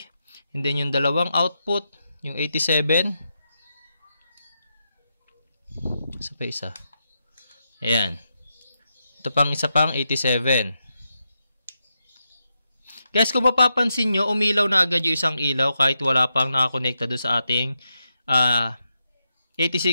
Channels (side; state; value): both; inverted; correlation -0.85